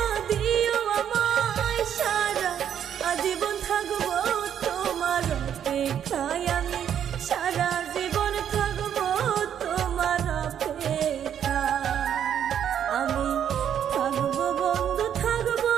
দিও আমায়। সারা জীবন থাকবো তোমার অপেক্ষায়। আমি সারা জীবন থাকবো তোমার অপেক্ষায়। আমি থাকবো বন্ধু, থাকবো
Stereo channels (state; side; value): quieter; left; 9.2 dB